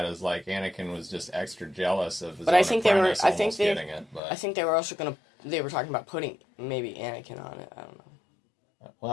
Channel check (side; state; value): right; drops out; at 4.2 s